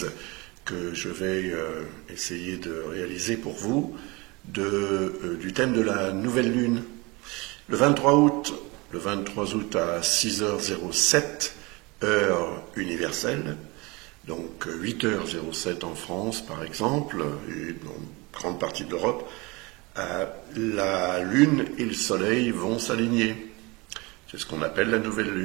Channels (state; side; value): quieter; left; 25.5 dB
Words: que je vais essayer de réaliser pour vous du thème de la nouvelle lune. Le 23 août à 6h07, heure universelle, donc 8h07 en France par exemple, et dans une grande partie de l'Europe, la lune et le soleil vont s'aligner. C'est ce qu'on appelle la nouvelle